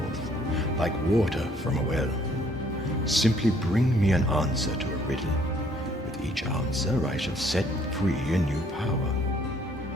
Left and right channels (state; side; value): normal; both; correlation 0.62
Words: like water from a well. Simply bring me an answer to a riddle. With each answer, I shall set free a new power.